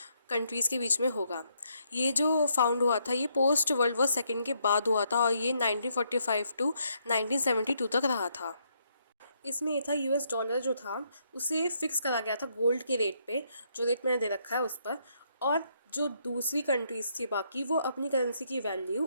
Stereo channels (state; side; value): inverted; both; correlation -0.74